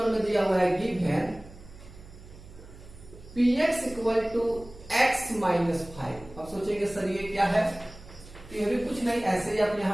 में दिया हुआ है given px equal to x minus 5। अब सोचेंगे सर ये क्या है? ये भी कुछ नहीं, ऐसे ही आप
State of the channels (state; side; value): noise; right; hum, 19 dB below the sound